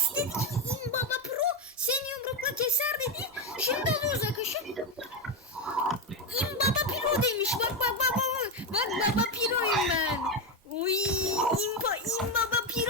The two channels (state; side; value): normal; both; correlation 0.11